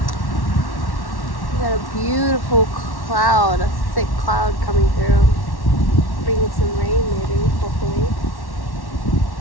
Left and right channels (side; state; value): right; late; 1.1 ms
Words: We got a beautiful cloud, a thick cloud coming through. Bringing some rain maybe, hopefully.